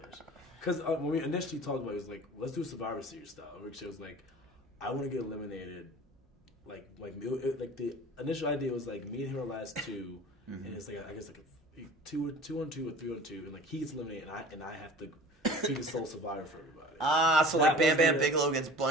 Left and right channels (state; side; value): normal; both; correlation 0.42